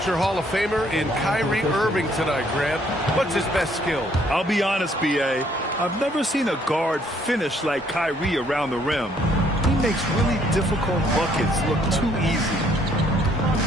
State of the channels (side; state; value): both; normal; correlation 0.66